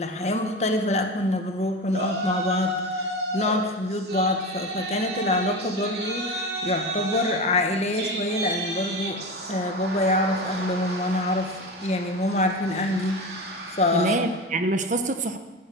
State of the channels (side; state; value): both; normal; correlation 0.25